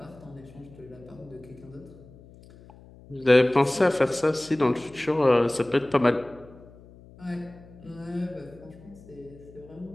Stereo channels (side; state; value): left; noise; hum, 22 dB below the sound